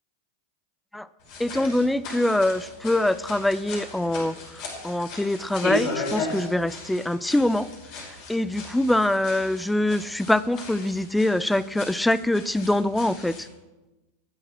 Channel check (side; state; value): both; normal; correlation 0.90